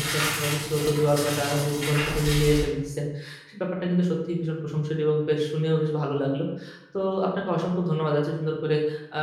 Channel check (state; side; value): identical; both; correlation 1.00